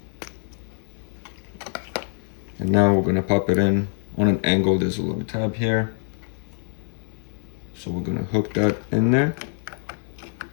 And now we're gonna pop it in on an angle. There's a little tab here. So we're gonna hook that in there.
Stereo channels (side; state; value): right; silent; digital silence